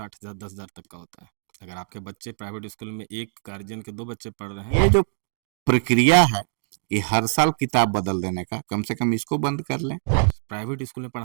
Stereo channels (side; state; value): left; silent; digital silence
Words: हजार, 10 हजार तक का होता है। अगर आपके बच्चे प्राइवेट स्कूल में एक गार्जियन के 2 बच्चे पढ़ रहे हैं, ये जो प्रक्रिया है कि हर साल किताब बदल देने का, कम से कम इसको बंद कर लें। प्राइवेट स्कूल में